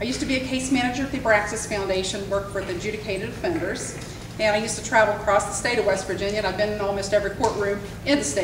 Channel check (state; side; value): identical; both; correlation 1.00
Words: I used to be a case manager at the Abraxas Foundation, worked for the adjudicated offenders, and I used to travel across the state of West Virginia, and I've been in almost every courtroom in the